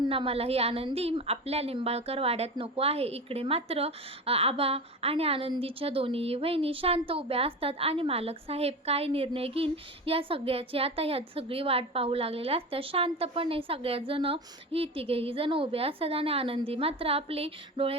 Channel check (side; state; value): both; normal; correlation 0.27